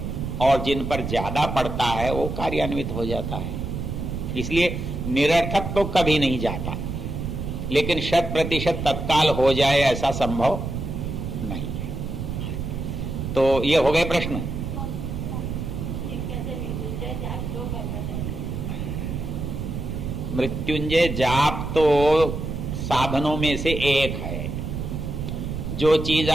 और जिन पर ज्यादा पड़ता है वो कार्यान्वित हो जाता है। इसलिए निरर्थक तो कभी नहीं जाता, लेकिन 100% तत्काल हो जाए ऐसा संभव नहीं है। तो ये हो गए प्रश्न। मृत्युंजय जाप तो साधनों में से एक है। जो चीज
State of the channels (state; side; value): noise; right; rumble, 4 dB below the sound